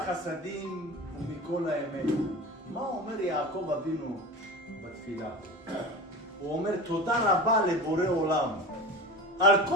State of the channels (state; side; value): normal; both; correlation 0.31